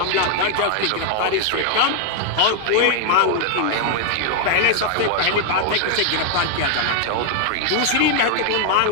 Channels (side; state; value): both; different; correlation 0.00